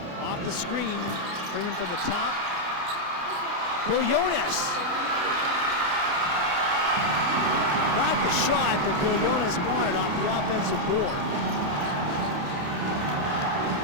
Off the screen, Freeman from the top. Willones. Not the shot that Willones wanted off the offensive board.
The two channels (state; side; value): late; left; 28 ms